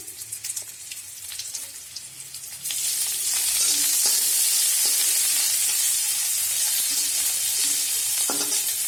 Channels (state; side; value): identical; both; correlation 1.00